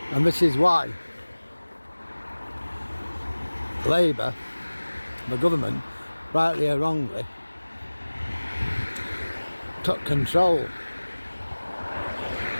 And this is why Labour, the government, rightly or wrongly, took control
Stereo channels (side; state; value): both; inverted; correlation -1.00